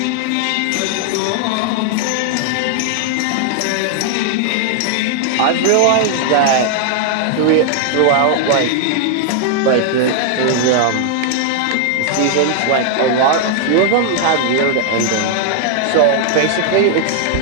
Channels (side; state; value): both; different; correlation 0.00